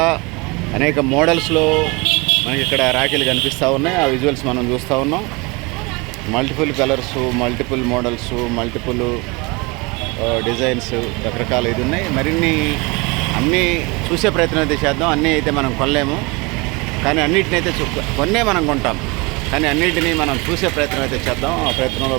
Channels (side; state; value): left; quieter; 26.4 dB